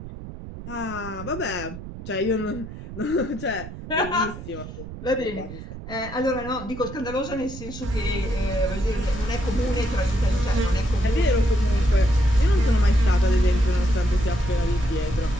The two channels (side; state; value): right; noise; rumble, 12 dB below the sound